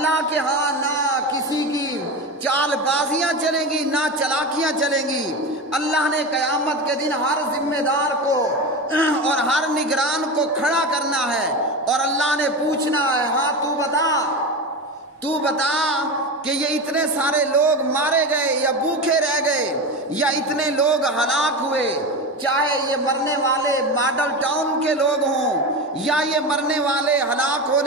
کے ہاں نہ کسی کی چال بازیاں چلیں گی، نہ چلاکیاں چلیں گی۔ اللہ نے قیامت کے دن ہر ذمہ دار کو اور ہر نگران کو کھڑا کرنا ہے اور اللہ نے پوچھنا ہے، ہاں تو بتا کہ یہ اتنے سارے لوگ مارے گئے یا بھوکے رہ گئے یا اتنے لوگ ہلاک ہوئے، چاہے یہ مرنے والے ماڈل ٹاؤن کے لوگ ہوں یا یہ مرنے والے ہلاک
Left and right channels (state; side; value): normal; both; correlation 0.23